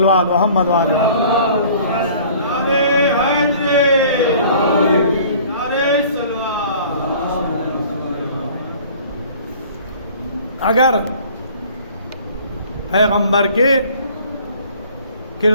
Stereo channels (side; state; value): both; inverted; correlation -0.50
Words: محمد وعلیہ اگر پیغمبر کے